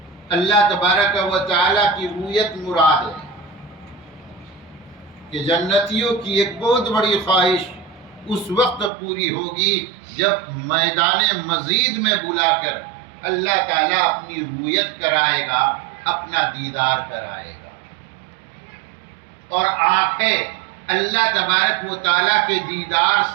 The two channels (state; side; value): drops out; left; at 8.9 s